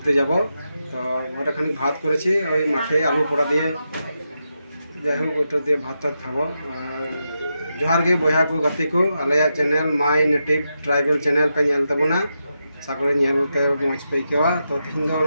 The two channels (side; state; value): both; inverted; correlation -0.86